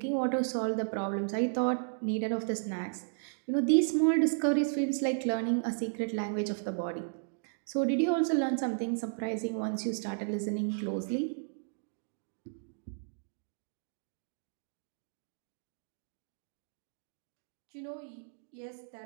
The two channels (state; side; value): silent; left; digital silence